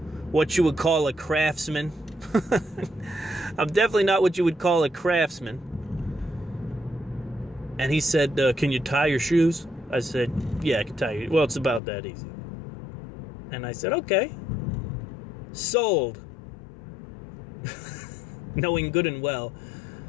you would call a craftsman. I'm definitely not what you would call a craftsman. And he said, can you tie your shoes? I said, yeah, I can tie you. Well, it's about that easy. And I said, okay. Sold. Knowing good and well,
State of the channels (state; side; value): drops out; right; at 11.8 s